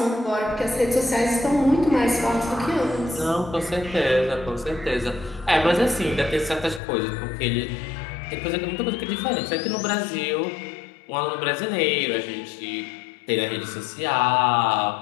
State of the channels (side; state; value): right; drops out; at 6.8 s